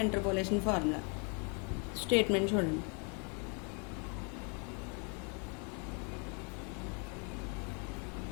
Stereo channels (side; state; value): right; quieter; 36.3 dB